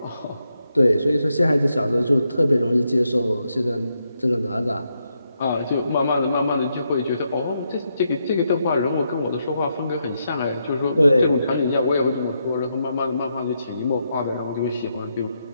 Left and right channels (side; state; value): both; inverted; correlation -0.81